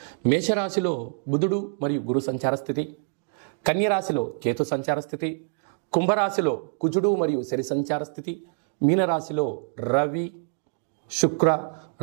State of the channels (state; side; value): silent; left; digital silence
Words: మేషరాశిలో బుధుడు మరియు గురు సంచార స్థితి, కన్యరాశిలో కేతు సంచార స్థితి, కుంభరాశిలో కుజుడు మరియు శని సంచార స్థితి, మీనరాశిలో రవి, శుక్ర,